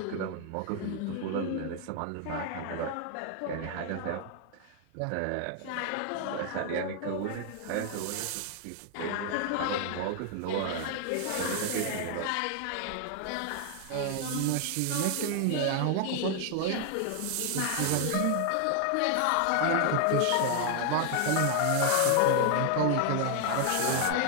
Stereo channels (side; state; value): both; different; correlation 0.00